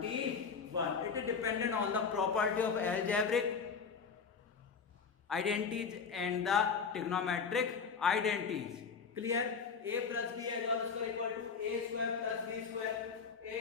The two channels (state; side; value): quieter; right; 5.7 dB